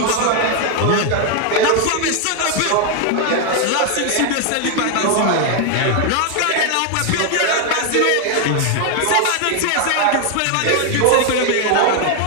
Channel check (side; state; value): both; different; correlation 0.01